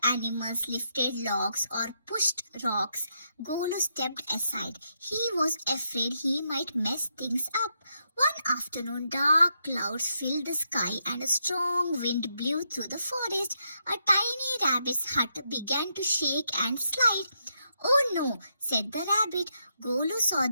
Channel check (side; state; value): both; inverted; correlation -0.80